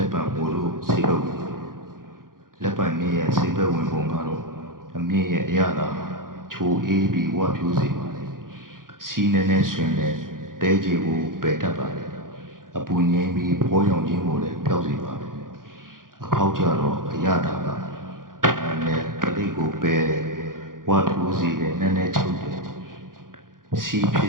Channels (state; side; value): late; left; 0.91 ms